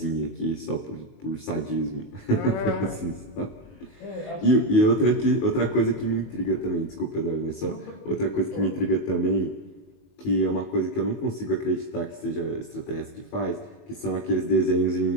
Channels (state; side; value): late; right; 21 ms